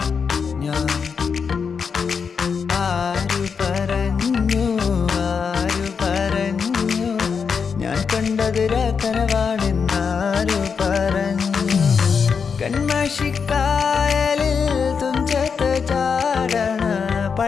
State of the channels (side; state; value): right; quieter; 6.0 dB